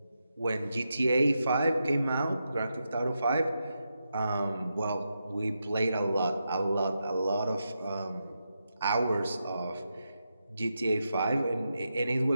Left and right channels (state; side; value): inverted; both; correlation -0.86